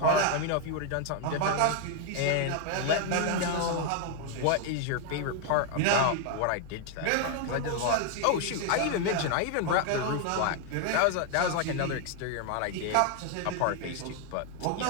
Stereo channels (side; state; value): both; different; correlation 0.00